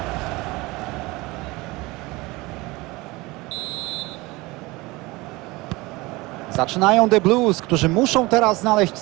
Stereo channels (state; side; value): quieter; left; 22.3 dB